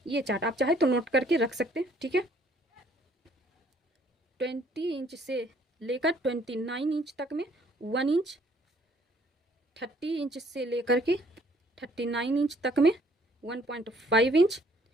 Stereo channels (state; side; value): normal; both; correlation 0.62